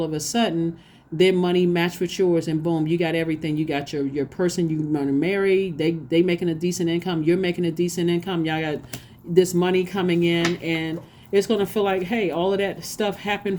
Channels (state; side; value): identical; both; correlation 1.00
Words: of a sudden their money matched with yours, and boom, you got everything. You got your person you want to marry. They making a decent income. You're making a decent income. Y'all got this money coming in, and it's going to feel like, hey, all of that stuff happened